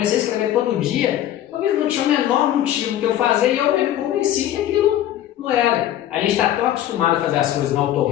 a escrever todo dia, talvez não tinha o menor motivo que eu fazer e eu me convenci que aquilo não era. A gente está tão acostumado a fazer as coisas no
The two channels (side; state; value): right; quieter; 12.2 dB